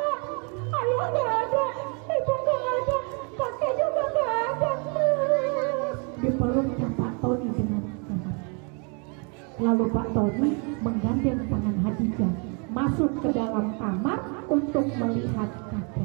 Ayah nggak ada, ibu nggak ada, kakek juga nggak ada. Dipeluknya Pak Tony dengan erat. Lalu Pak Tony menggandeng tangan Hadijah masuk ke dalam kamar untuk melihat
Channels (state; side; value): quieter; left; 36.2 dB